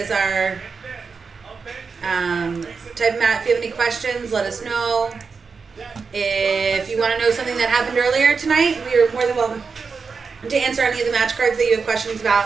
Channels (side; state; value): left; quieter; 5.1 dB